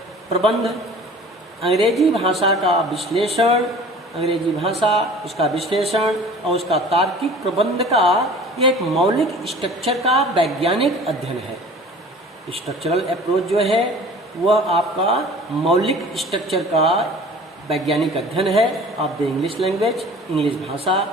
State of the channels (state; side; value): normal; both; correlation 0.45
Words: प्रबंध, अंग्रेजी भाषा का विश्लेषण, अंग्रेजी भाषा, उसका विश्लेषण और उसका तार्किक प्रबंध का यह एक मौलिक स्ट्रक्चर का वैज्ञानिक अध्ययन है। स्ट्रक्चरल अप्रोच जो है वह आपका मौलिक स्ट्रक्चर का वैज्ञानिक अध्ययन है of the English language, English भाषा,